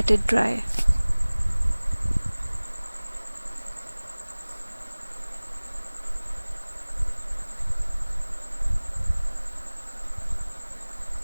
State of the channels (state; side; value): inverted; both; correlation -1.00